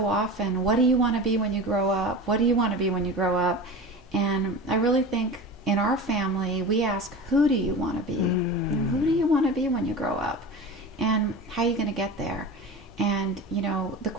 often, what do you want to be when you grow up? What do you want to be when you grow up? And I really think in our family, we ask, who do you want to be? You know, who do you want to be when you grow up? And how are you going to get there? And, you know, the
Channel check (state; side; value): normal; both; correlation 0.31